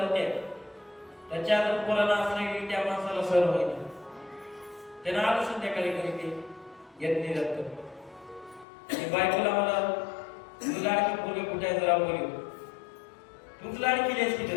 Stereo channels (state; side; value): drops out; right; at 8.7 s